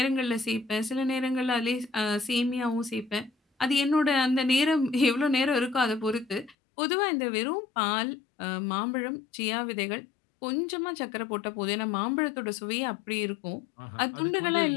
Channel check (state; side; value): drops out; right; at 6.6 s